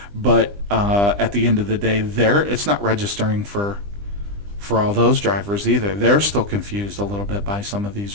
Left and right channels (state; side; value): late; left; 20 ms